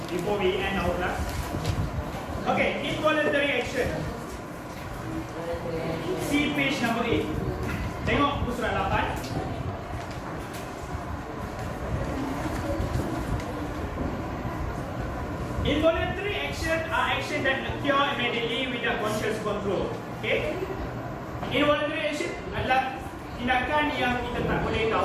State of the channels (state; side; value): identical; both; correlation 1.00